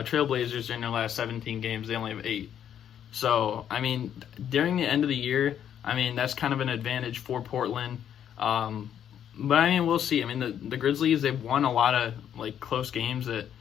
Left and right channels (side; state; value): right; quieter; 9.5 dB